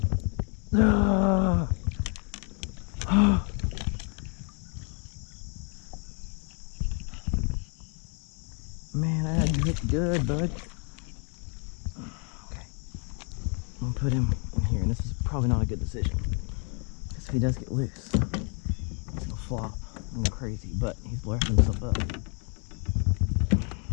Man, I had you hooked good, bud. Okay. I'm gonna put him in here, and this is probably not a good decision. Because if he does get loose, he's gonna flop and go crazy, but he's lifting himself up.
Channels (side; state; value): right; quieter; 38.5 dB